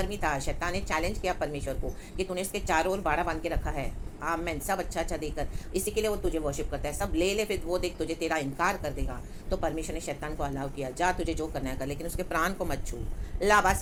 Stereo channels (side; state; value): both; identical; correlation 1.00